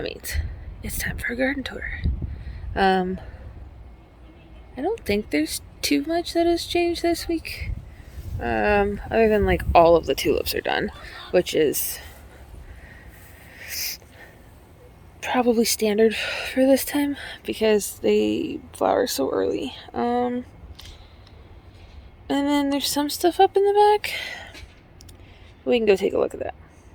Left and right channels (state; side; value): identical; both; correlation 1.00